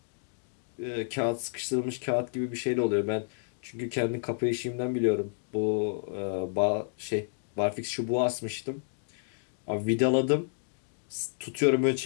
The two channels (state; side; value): silent; right; digital silence